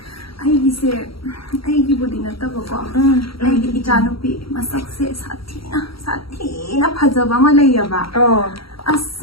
Ai cái bữa đi nãy tao bảo. Ai cái cha nó bị mà sắc sẽ sát thi na phật mà lấy à bà. As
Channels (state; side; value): late; right; 0.75 ms